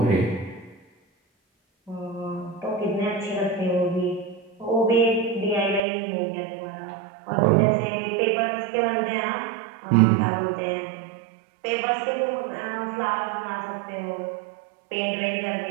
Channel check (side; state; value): left; drops out; at 5.8 s